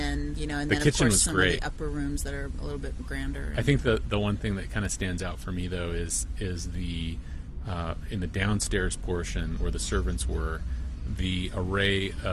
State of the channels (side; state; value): both; identical; correlation 1.00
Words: the then of kitchen course was some great. of the upper rooms that are a little bit grander. I think the one thing that kind of stands out for me though is the in the downstairs portion where the servants were, the array